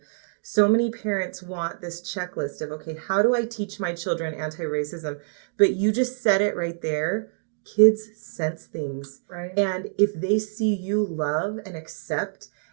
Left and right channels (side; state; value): left; silent; digital silence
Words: So many parents want this checklist of, okay, how do I teach my children anti-racism? But you just said it right there. Kids sense things. Right. And if they see you love and accept